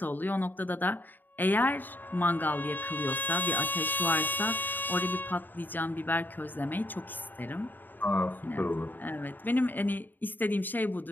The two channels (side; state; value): right; late; 0.090 ms